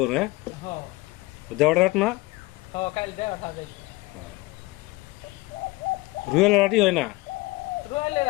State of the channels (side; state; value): right; quieter; 21.9 dB